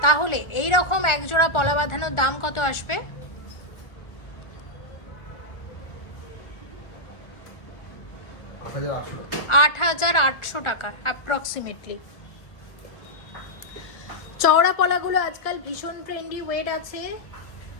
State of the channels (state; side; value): late; right; 1.4 ms